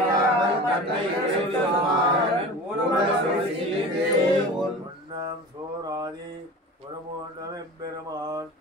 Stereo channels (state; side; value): normal; both; correlation 0.36